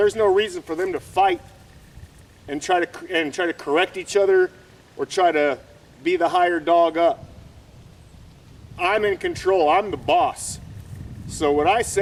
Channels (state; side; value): identical; both; correlation 1.00